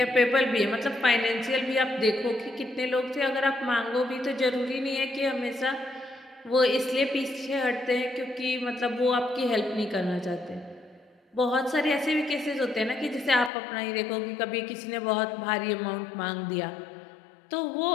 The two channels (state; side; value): drops out; right; at 13.5 s